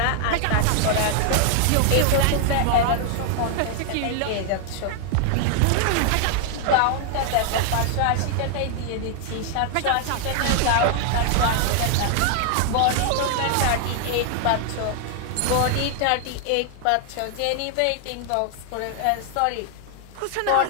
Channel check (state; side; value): different; both; correlation 0.00